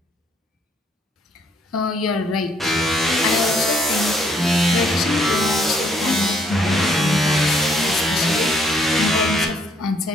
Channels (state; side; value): normal; both; correlation 0.67